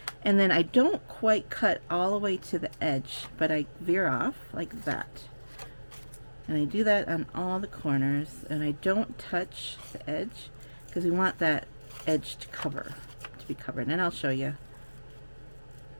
and then I don't quite cut all the way to the edge, but I veer off like that. And I do that on all the corners, and I don't touch the edge because we want that edge to be covered, and I'll show you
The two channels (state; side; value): inverted; both; correlation -1.00